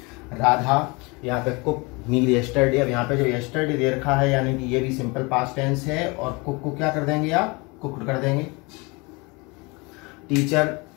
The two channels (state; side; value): quieter; right; 27.1 dB